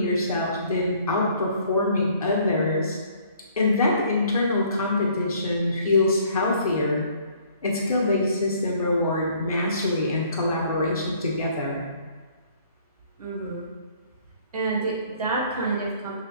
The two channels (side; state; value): both; inverted; correlation -0.60